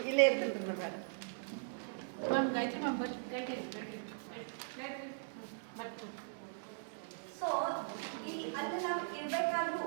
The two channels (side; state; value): left; silent; 52 dB below the other